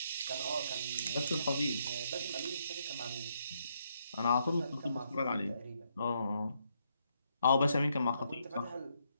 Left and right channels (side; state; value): both; inverted; correlation -0.76